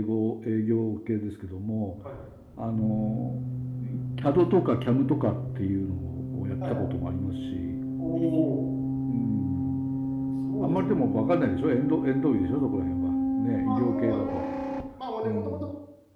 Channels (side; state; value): both; identical; correlation 1.00